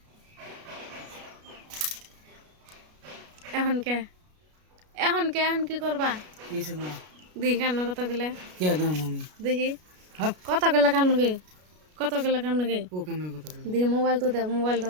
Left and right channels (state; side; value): late; left; 33 ms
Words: এখন কে এখন কে এখন কি করবা দেখি কান্ন কথা গেলে দেখি কথা গেলে কান্ন গে কথা গেলে কান্ন গে দেখি মোবাইল তো দাও মোবাইল